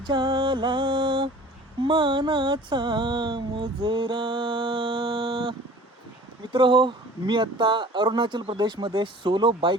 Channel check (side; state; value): both; normal; correlation 0.46